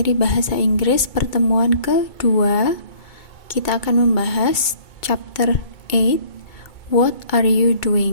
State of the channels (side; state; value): right; late; 2.2 ms